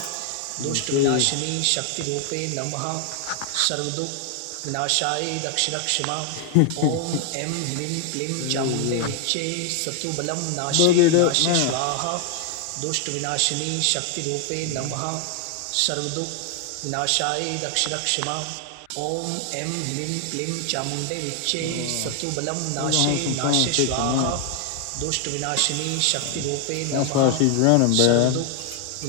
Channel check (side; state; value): both; different; correlation 0.00